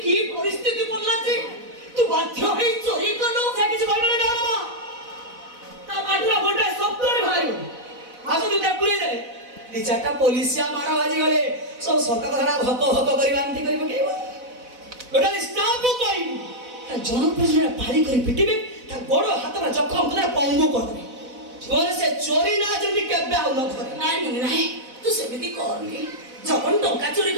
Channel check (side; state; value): left; late; 4.0 ms